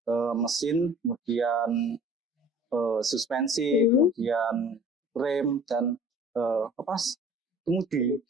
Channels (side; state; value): both; normal; correlation 0.48